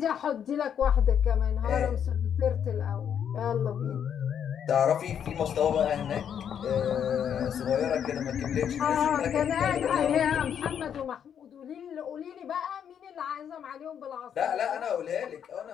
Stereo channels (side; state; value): right; quieter; 8.5 dB